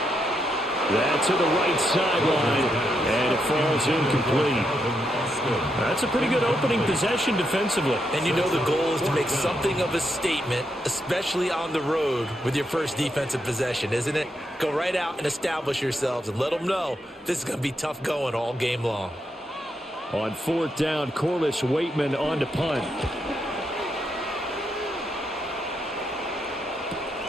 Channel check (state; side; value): normal; both; correlation 0.81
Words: That's to the right sideline, and it falls incomplete. That's a pretty good opening possession defensively. And you know the goal is to make something of a statement, especially on the road with your first defensive possession, isn't it? Go right out and establish yourselves and let them know this is going to be tough going all game long. On 4th down, Corliss Waitman on to punt.